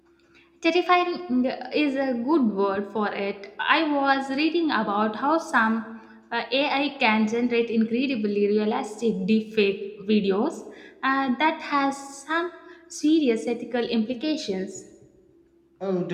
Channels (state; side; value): identical; both; correlation 1.00